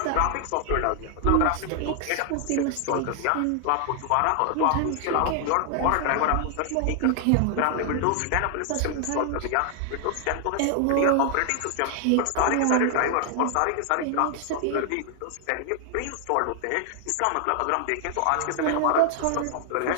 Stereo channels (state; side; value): different; both; correlation 0.00